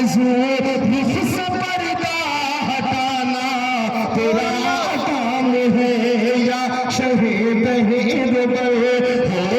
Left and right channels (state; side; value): identical; both; correlation 1.00